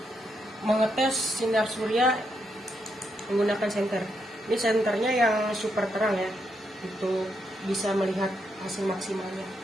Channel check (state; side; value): normal; both; correlation 0.80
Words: mengetes sinar surya menggunakan senter. Ini senternya yang super terang ya, untuk bisa melihat hasil maksimalnya.